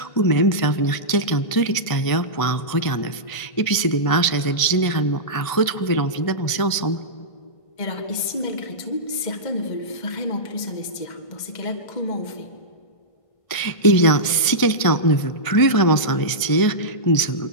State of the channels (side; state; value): right; late; 1.5 ms